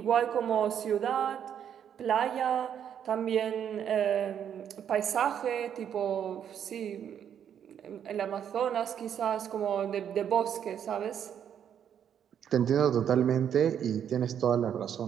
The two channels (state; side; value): quieter; left; 8.9 dB